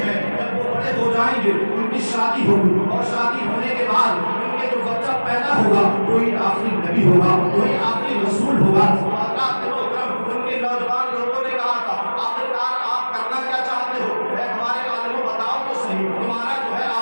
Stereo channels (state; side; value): inverted; both; correlation -1.00